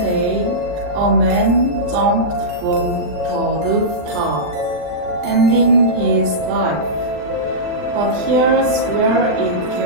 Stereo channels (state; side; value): late; left; 39 ms